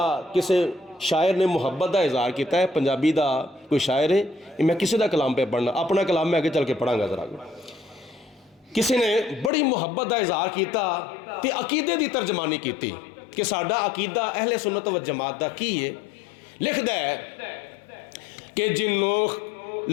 किसे शायर ने मुहब्बत का इजहार किया है। पंजाबी का कोई शायर है, मैं किसी का कलाम पे पढ़ना, अपना कलाम मैं आगे चल के पढ़ांगा जरा। किसी ने बड़ी मुहब्बत का इजहार किया ते अकीदे की तर्जमानी की कि साडा अकीदा अहले सुन्नत व जमात का की है। लिखदा है कि जिन्नों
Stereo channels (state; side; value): drops out; right; at 9.5 s